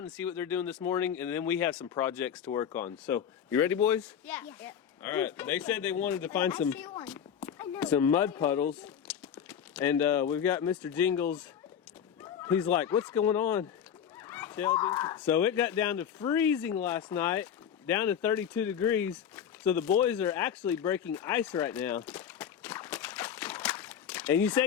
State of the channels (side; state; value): right; quieter; 8.6 dB